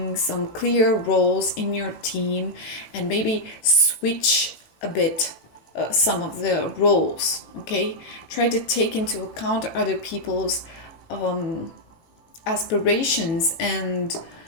some clear roles in your team, and maybe switch a bit some of the roles. Okay, try to take into account other people's aspirations and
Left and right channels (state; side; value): late; right; 18 ms